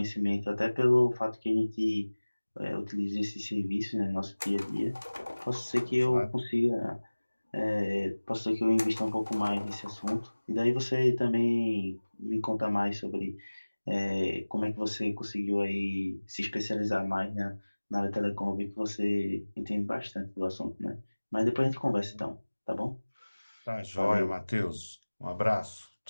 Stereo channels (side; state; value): both; inverted; correlation -1.00